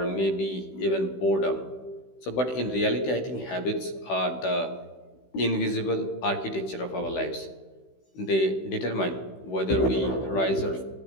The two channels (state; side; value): late; right; 16 ms